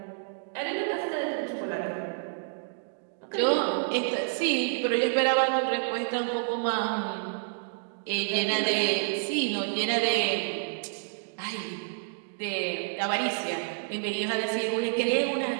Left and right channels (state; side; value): silent; left; digital silence